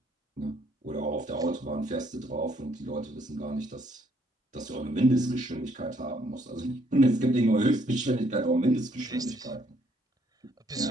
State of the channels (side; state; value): both; normal; correlation 0.68